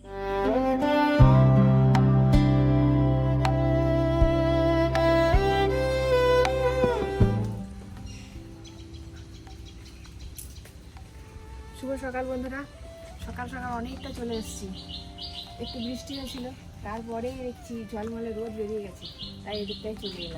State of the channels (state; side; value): identical; both; correlation 1.00